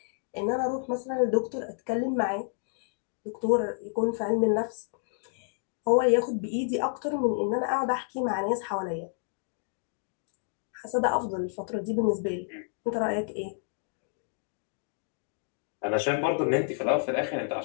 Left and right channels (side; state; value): right; silent; digital silence